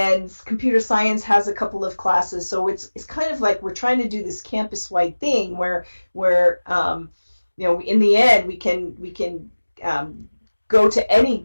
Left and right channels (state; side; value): inverted; both; correlation -1.00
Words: computer science has a couple of classes. So it's kind of like we're trying to do this campus-wide thing where in the end we can go to